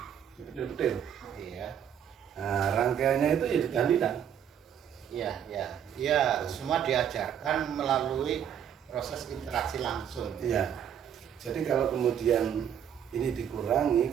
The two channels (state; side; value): quieter; left; 9.0 dB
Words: detail. Iya. Nah, rangkaiannya itu ya tahlilan. Iya, semua diajarkan melalui proses interaksi langsung. Iya. Jadi kalau kemudian ini dikurangi,